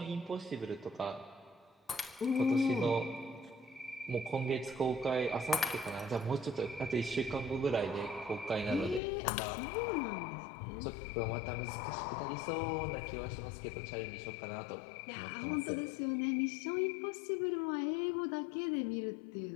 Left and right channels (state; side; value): drops out; right; at 9.0 s